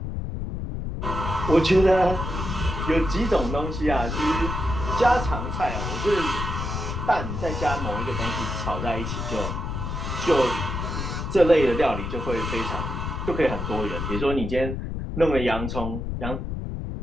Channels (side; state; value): left; noise; rumble, 4 dB below the sound